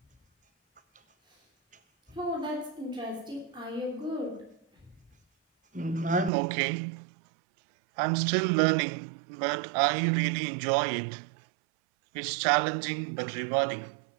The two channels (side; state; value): left; drops out; at 6.3 s